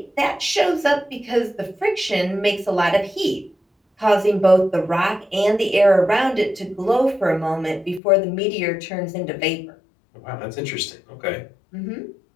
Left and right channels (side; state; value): right; drops out; at 8.0 s